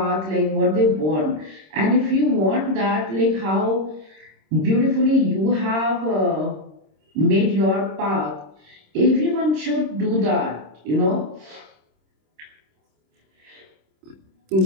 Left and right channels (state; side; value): late; left; 26 ms